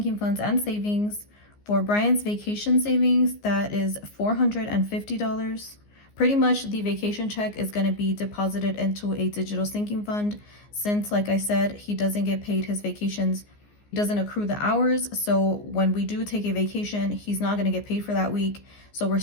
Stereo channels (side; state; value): right; late; 14 ms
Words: funds and savings. For Brian's vacation savings, that is $450. Pretty much the vacation check is going to be deposited into a digital sinking fund since, like I said, he doesn't get paid his vacations. He doesn't accrue the hours. So when we do take a vacation, he's not going to get paid for that week. So we're